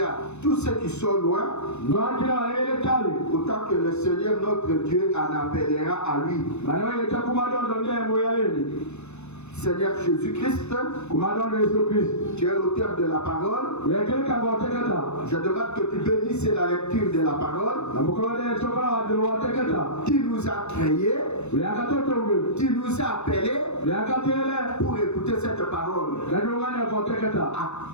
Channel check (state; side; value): late; right; 0.81 ms